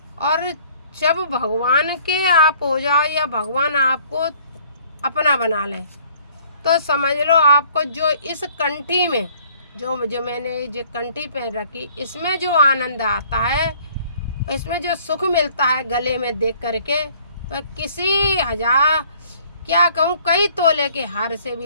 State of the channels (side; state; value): both; inverted; correlation -0.57